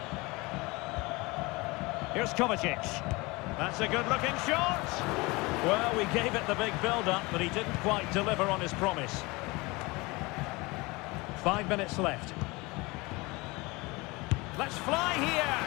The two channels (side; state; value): right; quieter; 24.1 dB